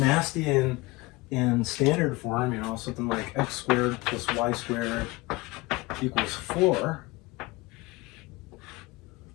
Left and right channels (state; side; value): quieter; right; 22.5 dB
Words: in standard form, you know, something like x squared plus y squared equals 4.